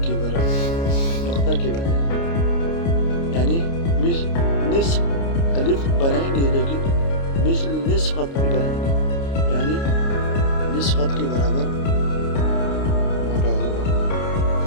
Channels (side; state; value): right; late; 29 ms